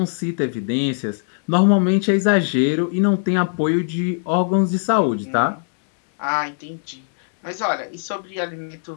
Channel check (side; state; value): right; silent; 65 dB below the other